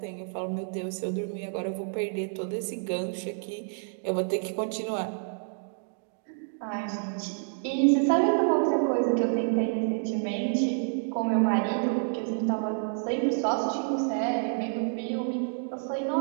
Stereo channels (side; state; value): left; silent; digital silence